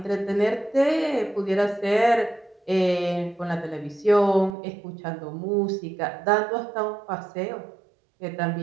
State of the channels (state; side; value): drops out; left; at 4.5 s